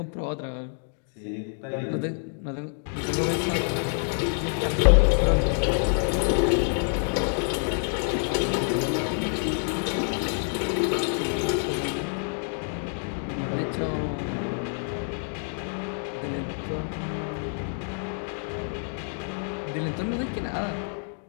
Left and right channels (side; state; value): right; silent; 57 dB below the other